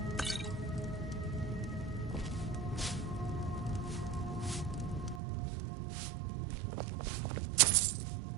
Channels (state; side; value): drops out; left; at 5.2 s